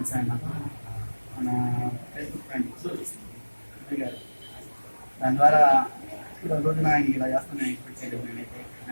ఆయన మన ఫేస్బుక్ ఫ్రెండ్ గారు. దాని ద్వారా ఇప్పుడు రోజున ఆయనకి ఇలా చేస్తున్నాను ఎక్స్పెక్ట్ చేయలేదు. నేనైతే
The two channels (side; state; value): both; inverted; correlation -1.00